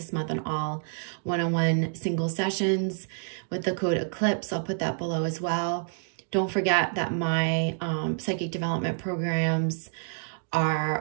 month on all one-on-one single sessions with the code ECLIPSE. I'll put that below as well. Don't forget that my psychic development programs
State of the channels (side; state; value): left; silent; digital silence